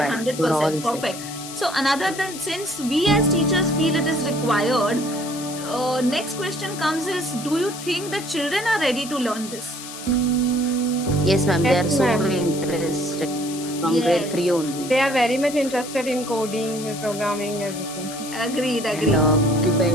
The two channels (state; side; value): noise; left; hiss, 11 dB below the sound